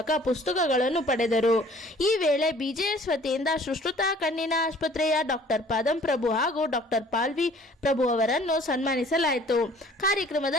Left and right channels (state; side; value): normal; both; correlation 0.53